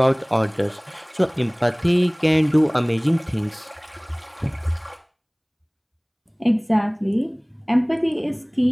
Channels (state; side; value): identical; both; correlation 1.00